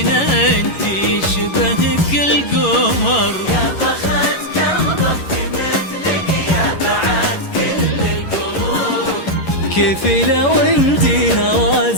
انتي شبهك القمر. يا بخت قلبك مثلك يا بعد كل القلوب. كيف لو انتي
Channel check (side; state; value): right; late; 11 ms